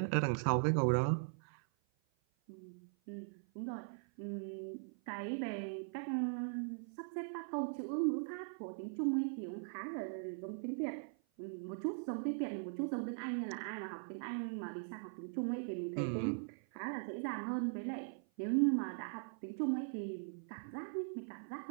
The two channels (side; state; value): left; silent; 51 dB below the other